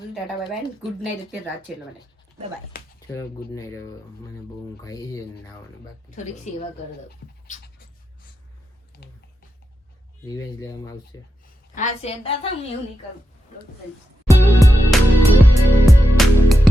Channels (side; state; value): both; normal; correlation 0.87